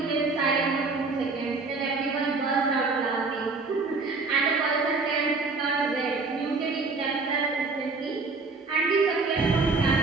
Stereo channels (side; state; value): left; quieter; 3.9 dB